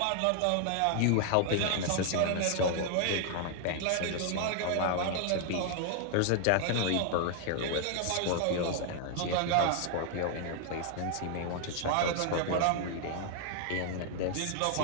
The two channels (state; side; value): different; both; correlation 0.00